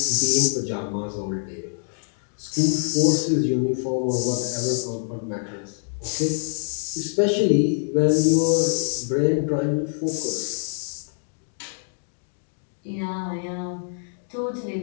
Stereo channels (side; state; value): right; silent; digital silence